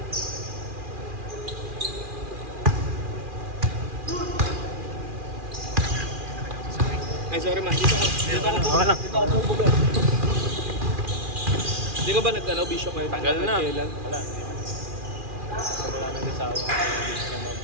Ay, sorry man. Dito ako bubuga. Hindi ka ba nag-ano, bisyo kayo? Tagal na. Kailan? Wala, hindi na. Wala nag-asawa.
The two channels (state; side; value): late; left; 2.4 ms